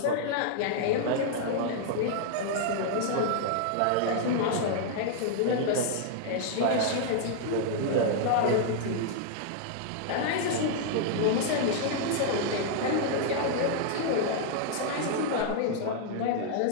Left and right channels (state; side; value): different; both; correlation -0.01